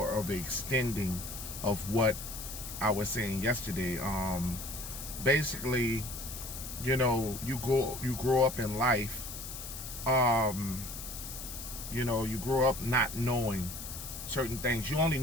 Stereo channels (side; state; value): left; noise; hiss, 9 dB below the sound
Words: of a extending of what I was saying yesterday. Basically, you know, you grow up in life. You know, you grow up not knowing certain things. You only